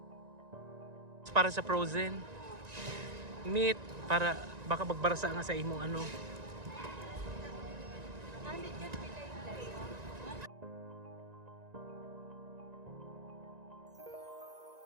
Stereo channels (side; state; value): left; late; 1.9 ms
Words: Para sa frozen. Meat, para baka magbarasa nga sa imong ano.